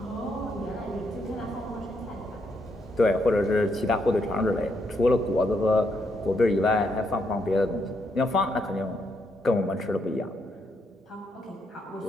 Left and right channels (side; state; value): both; normal; correlation 0.77